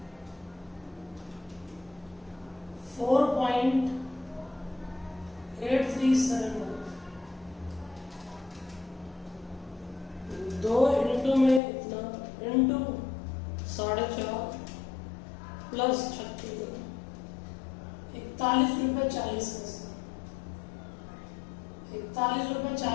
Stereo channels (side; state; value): right; drops out; at 11.6 s